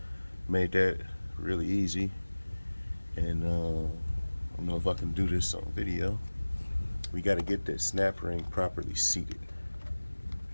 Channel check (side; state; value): both; inverted; correlation -1.00